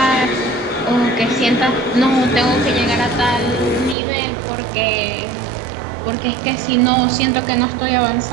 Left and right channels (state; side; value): drops out; left; at 4.0 s